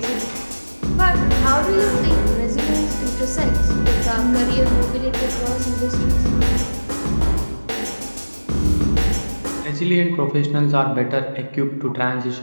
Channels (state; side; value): inverted; both; correlation -1.00